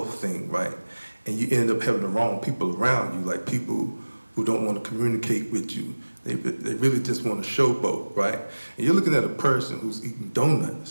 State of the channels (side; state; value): both; inverted; correlation -1.00